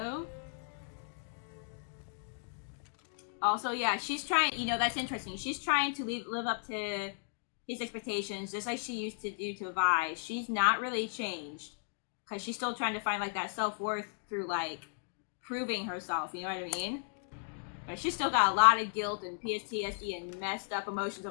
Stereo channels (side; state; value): right; silent; digital silence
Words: Also, yeah, she's trying, you know, that's interesting. She's trying to live up to his expectations just like she used to do to Vi. She's not really changed because she's still trying to find like that self-worth through like proving herself, you know what I mean? But she's still got a lot of guilt and PTSD and messed up emotions